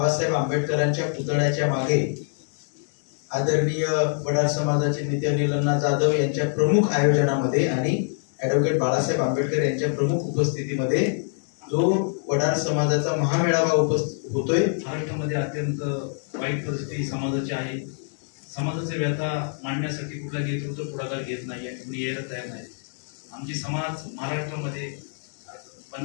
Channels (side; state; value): right; silent; digital silence